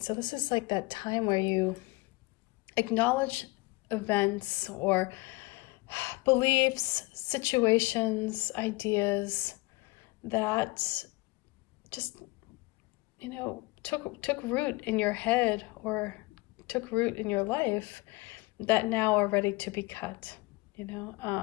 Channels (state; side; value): quieter; right; 23.6 dB